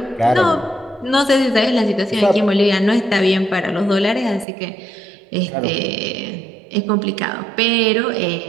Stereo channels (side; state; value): left; drops out; at 4.5 s